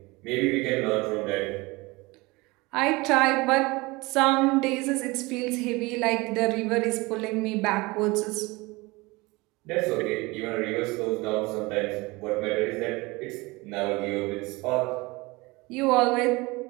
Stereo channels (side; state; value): left; quieter; 23.4 dB